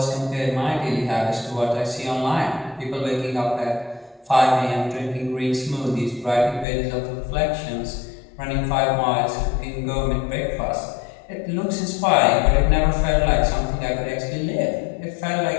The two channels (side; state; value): right; drops out; at 6.7 s